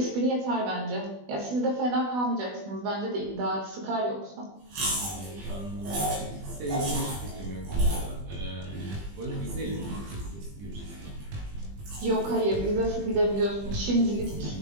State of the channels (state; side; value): late; left; 20 ms